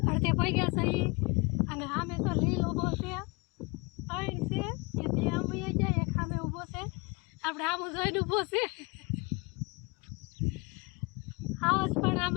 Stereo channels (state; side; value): quieter; right; 27.6 dB